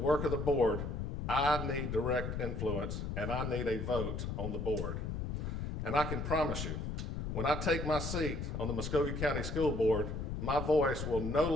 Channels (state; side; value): noise; left; rumble, 3 dB below the sound